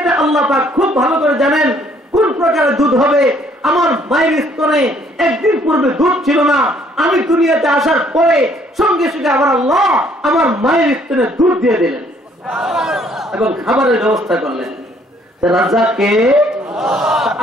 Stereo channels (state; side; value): normal; both; correlation 0.63